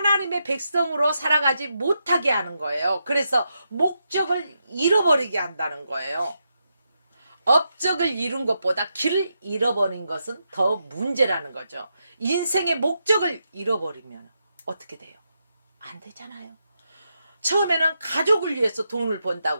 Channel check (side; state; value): both; inverted; correlation -0.84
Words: 백성으로 살아가지 못하게 하는 거예요. 그래서 목적을 잃어버리게 한다는 거예요. 업적을 이룬 것보다 길을 잃어버린 것은 더 문제라는 거죠. 인생의 목적을 잃어버리면 어떻게 돼요? 안 되잖아요. 처음에는 가족을 위해서 돈을